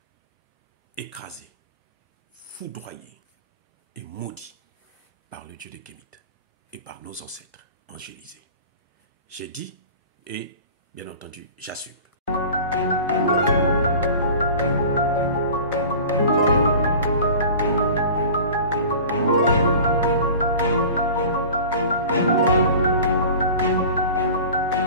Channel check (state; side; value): inverted; both; correlation -0.39